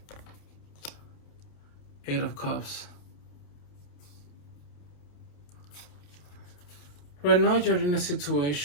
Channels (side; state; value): right; late; 28 ms